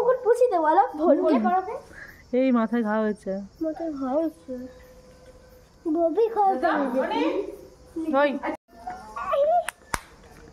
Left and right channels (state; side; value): identical; both; correlation 1.00